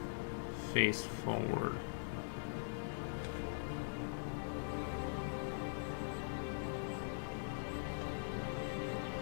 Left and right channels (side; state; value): right; silent; digital silence